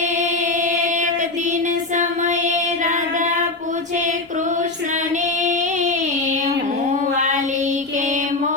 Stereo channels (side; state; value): right; quieter; 3.2 dB